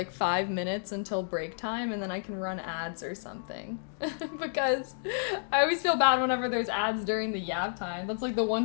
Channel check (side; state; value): right; silent; digital silence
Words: 5 minutes until break time and then I can run ads or something. Because I always feel bad whenever there's ads during the yap time. That's like the